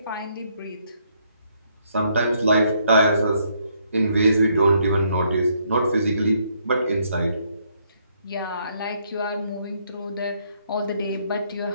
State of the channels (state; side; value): inverted; both; correlation -0.71